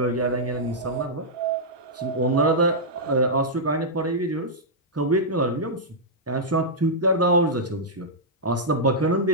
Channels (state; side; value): normal; both; correlation -0.09